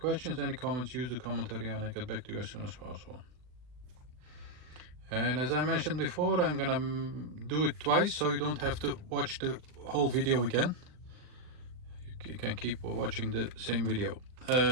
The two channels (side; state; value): left; late; 39 ms